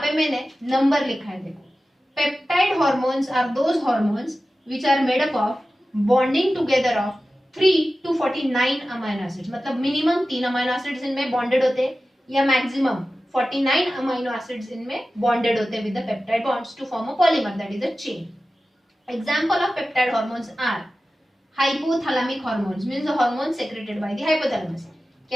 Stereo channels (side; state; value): both; normal; correlation 0.95